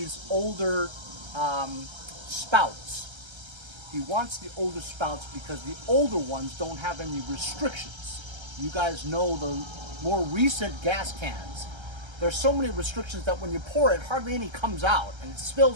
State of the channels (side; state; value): left; late; 1.3 ms